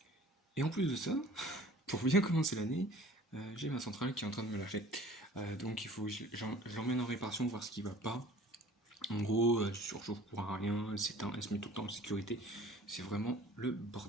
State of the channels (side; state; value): both; normal; correlation 0.48